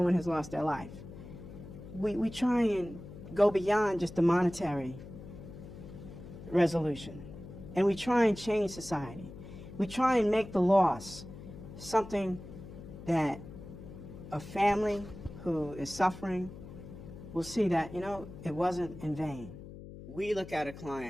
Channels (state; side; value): noise; left; hum, 14 dB below the sound